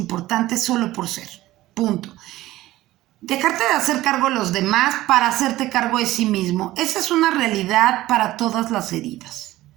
solo por ser. Punto. Dejarte de hacer cargo de los demás para hacerte cargo de sí mismo. Esa es una realidad para todas las heridas.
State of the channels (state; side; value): quieter; left; 16.4 dB